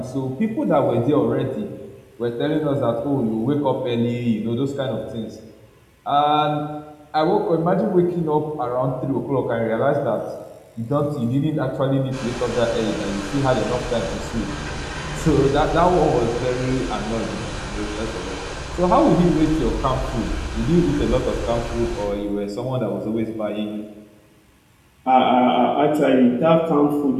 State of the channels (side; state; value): both; identical; correlation 1.00